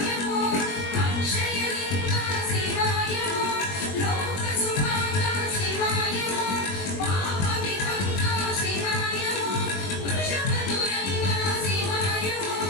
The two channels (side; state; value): right; late; 21 ms